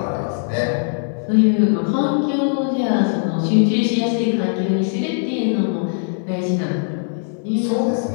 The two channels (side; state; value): right; silent; digital silence